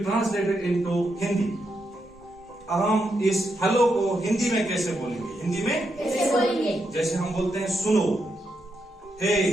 into Hindi? हम इस हेलो को हिंदी में कैसे बोलेंगे? हिंदी में कैसे बोलेंगे? जैसे हम बोलते हैं सुनो, हे,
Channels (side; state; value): both; normal; correlation 0.82